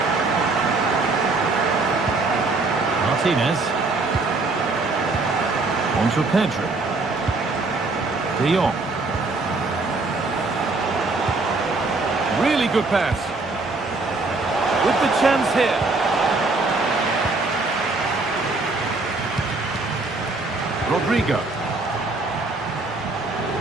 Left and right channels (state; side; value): quieter; left; 3.5 dB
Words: Martinez. On to Pedro. De Jong. Really good pass. With the chance here. Rodrigo.